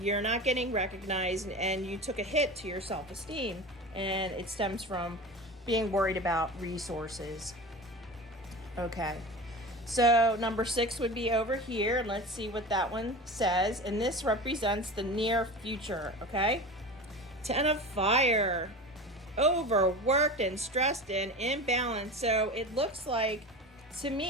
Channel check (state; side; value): normal; both; correlation 0.31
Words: not getting recognized, and you took a hit to your self-esteem, and it stems from being worried about resources. Okay, so number 6 would be over here, and let's see what that one says. And this represents the near future, okay? 10 of Fire, overworked and stressed and imbalanced. So it looks like, to